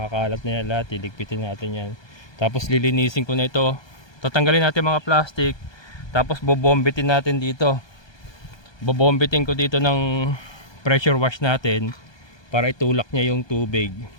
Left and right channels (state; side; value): late; right; 1.2 ms